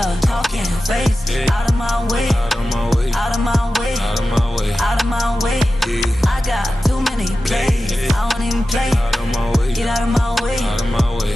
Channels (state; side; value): normal; both; correlation 0.94